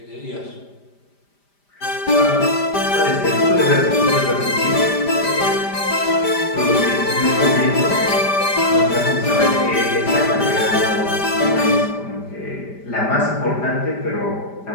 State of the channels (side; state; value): right; late; 5.0 ms